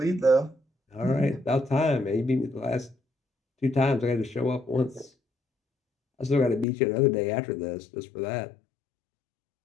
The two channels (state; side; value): drops out; right; at 6.7 s